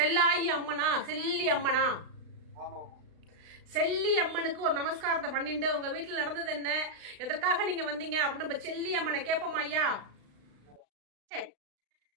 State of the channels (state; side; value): late; left; 36 ms